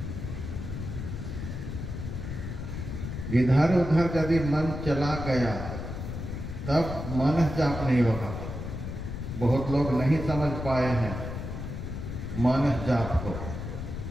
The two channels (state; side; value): noise; left; rumble, 6 dB below the sound